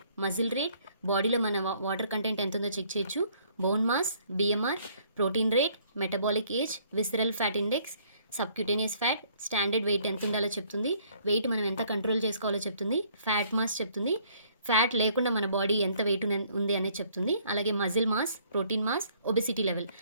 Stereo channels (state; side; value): inverted; both; correlation -0.62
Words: muscle rate, బాడీలో మన వాటర్ కంటెంట్ ఎంత ఉందో చెక్ చేయొచ్చు, bone mass, BMR, protein rate, metabolic age, visceral fat index, subcutaneous fat, standard weight ఎంత ఉండాలో చెప్తుంది, వెయిట్ మనం ఎంత కంట్రోల్ చేసుకోవాలో చెప్తుంది, ఫ్యాట్ మాస్ చెప్తుంది, ఫ్యాట్ లేకుండా మన బాడీ ఎంత వెయిట్ ఉంది అనేది చెప్తుంది, అలాగే muscle mass, protein mass, obesity level,